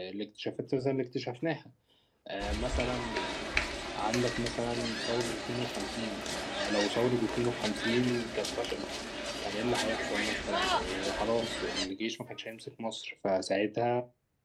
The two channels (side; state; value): both; identical; correlation 1.00